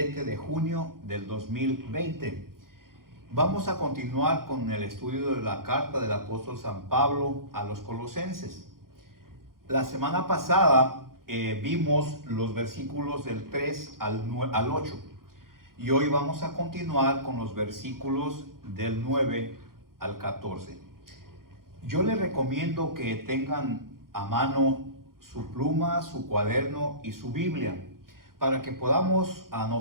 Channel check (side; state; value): left; late; 0.92 ms